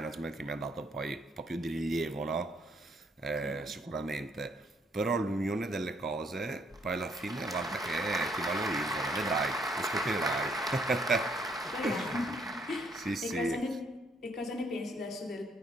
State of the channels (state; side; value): normal; both; correlation 0.69